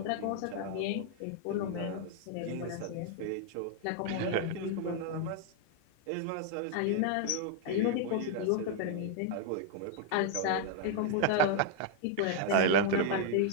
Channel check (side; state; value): both; different; correlation 0.00